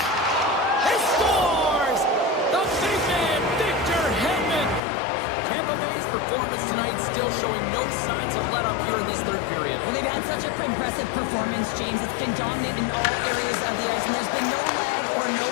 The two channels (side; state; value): right; drops out; at 4.8 s